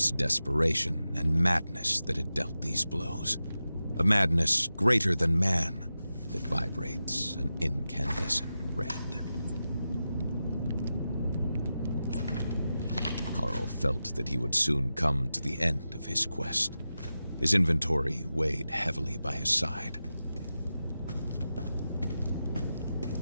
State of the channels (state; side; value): inverted; both; correlation -0.92